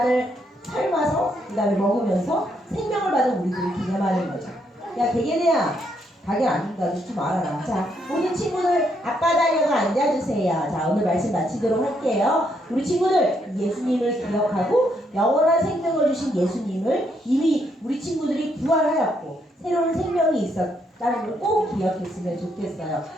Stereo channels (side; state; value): both; normal; correlation 0.75